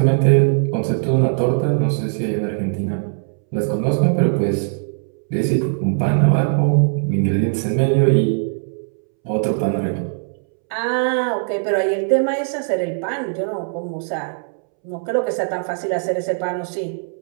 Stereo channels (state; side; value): silent; left; 66 dB below the other